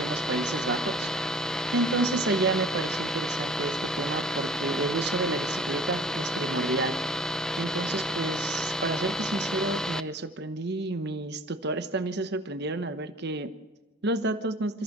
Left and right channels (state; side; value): normal; both; correlation 0.47